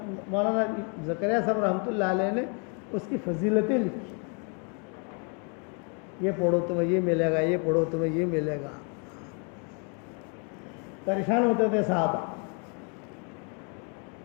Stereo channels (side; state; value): right; quieter; 37.7 dB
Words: مولانا زکریا صاحب رحمۃ اللہ علیہ نے اس کی فضیلتیں لکھی. یہ پڑھو تمہیں یہ ملے گا, یہ پڑھو تمہیں یہ ملے گا. پریشان ہوتے تھے صحابہ,